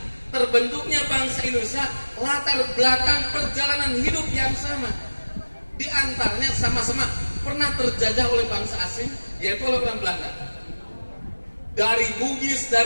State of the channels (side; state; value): both; inverted; correlation -1.00